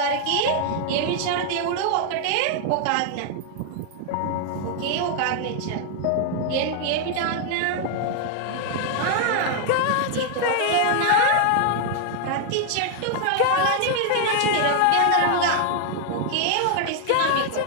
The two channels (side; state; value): both; different; correlation 0.00